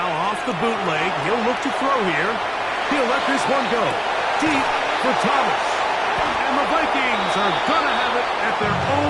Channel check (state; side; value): identical; both; correlation 1.00